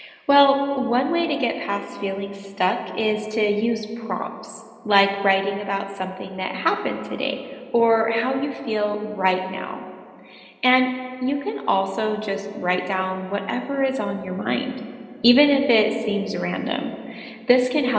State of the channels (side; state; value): both; identical; correlation 1.00